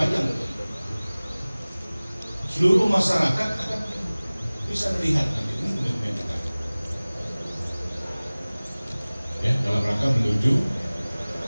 Seluruh masyarakat akan bisa melihat nanti ini komitmen kita. Ya, dalam rangka menuju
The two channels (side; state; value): both; inverted; correlation -0.99